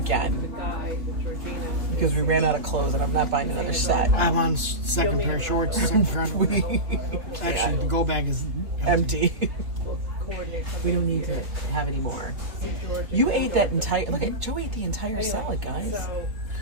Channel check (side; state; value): left; late; 3.0 ms